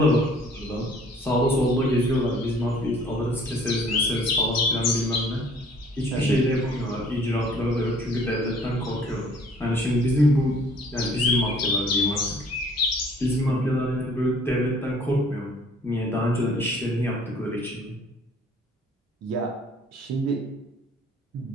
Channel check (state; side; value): normal; both; correlation 0.55